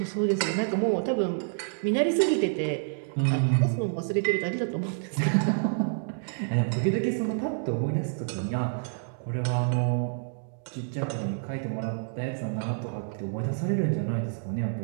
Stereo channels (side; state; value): left; silent; digital silence